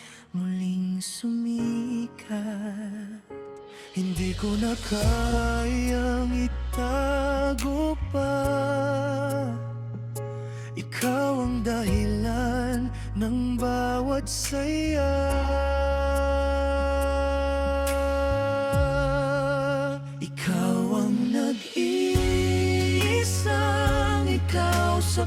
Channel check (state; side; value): identical; both; correlation 1.00